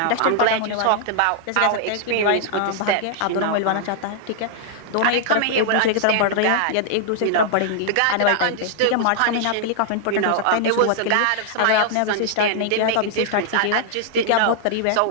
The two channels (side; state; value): both; different; correlation -0.01